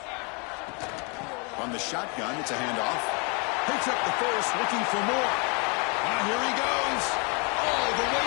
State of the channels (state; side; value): quieter; right; 33.4 dB